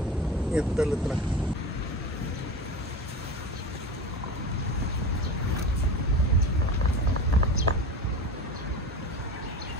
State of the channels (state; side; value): normal; both; correlation 0.29